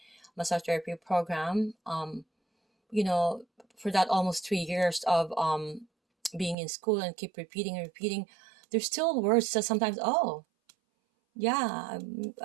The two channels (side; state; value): left; drops out; at 6.6 s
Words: massage therapy program, you know, for that almost 3 years of being in school and keep repeating and repeating, there's still words that sometimes, oh, yeah,